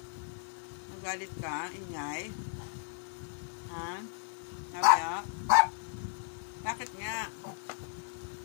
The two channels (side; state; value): right; silent; digital silence